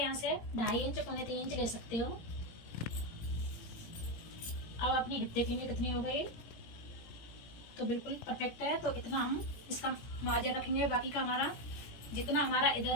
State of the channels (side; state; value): right; late; 17 ms